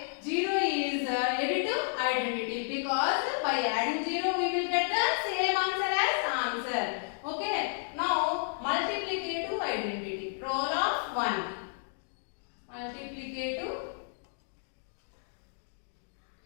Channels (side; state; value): right; silent; digital silence